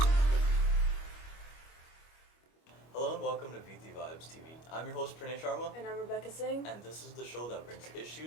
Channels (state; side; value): late; right; 25 ms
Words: Hello and welcome to Viti Vibes TV. I'm your host Pranay Sharma, And I'm Rebecca Singh. and this is the show that brings